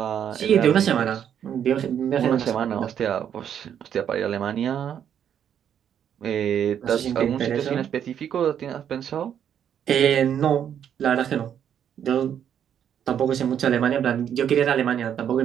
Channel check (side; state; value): left; quieter; 9.0 dB